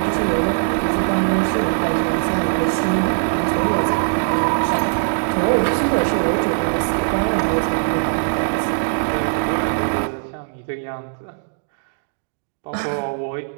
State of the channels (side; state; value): left; silent; digital silence